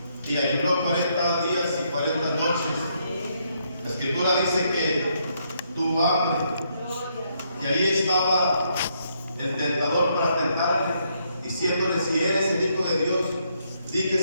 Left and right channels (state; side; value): inverted; both; correlation -0.74